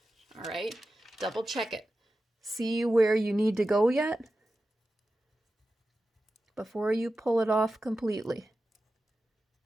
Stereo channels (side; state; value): both; normal; correlation 0.93